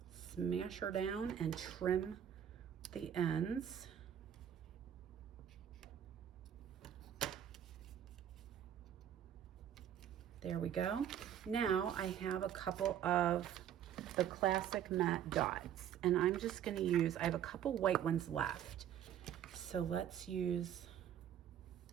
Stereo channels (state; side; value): quieter; left; 9.9 dB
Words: Smash her down and trim the ends. There we go. Now I have a couple of the classic matte dots, and I'm just gonna use, I have a couple white ones left. So let's use